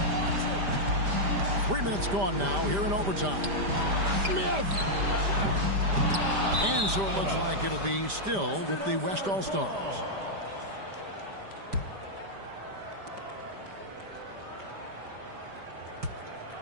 3 minutes gone now here in overtime. Smith! And so it looks like it'll be still with the West All-Stars.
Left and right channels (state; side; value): late; left; 5.0 ms